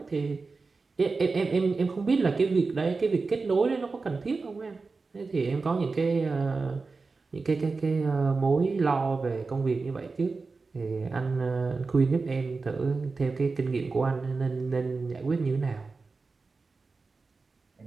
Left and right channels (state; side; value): quieter; left; 4.1 dB